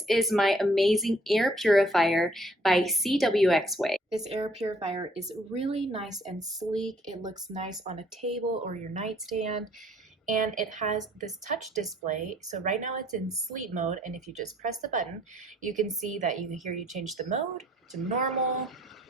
is my amazing air purifier by Cwxwei. This air purifier is really nice and sleek. It looks nice on a table or your nightstand, and it has this touch display. So right now it's in sleep mode, and if you just press the button, you can see that you change the mode to normal,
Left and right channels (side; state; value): both; normal; correlation 0.62